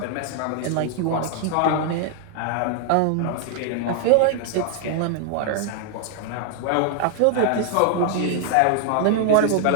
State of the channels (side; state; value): both; different; correlation 0.00